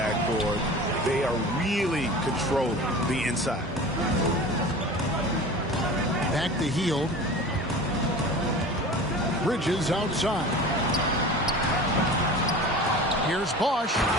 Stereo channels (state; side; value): normal; both; correlation 0.37